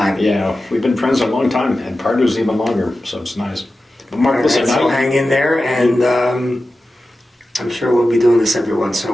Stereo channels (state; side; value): normal; both; correlation 0.93